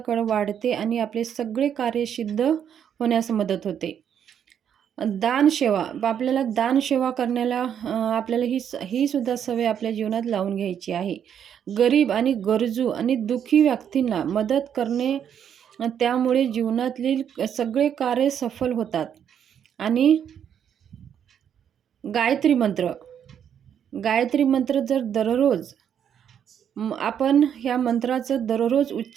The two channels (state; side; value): quieter; left; 8.7 dB